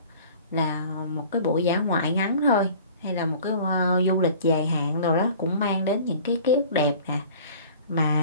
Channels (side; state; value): both; inverted; correlation -0.46